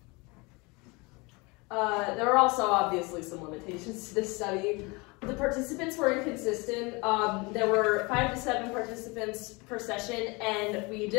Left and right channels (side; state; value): right; quieter; 26.8 dB